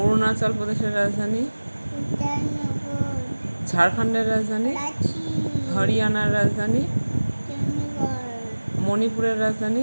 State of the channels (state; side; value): inverted; both; correlation -1.00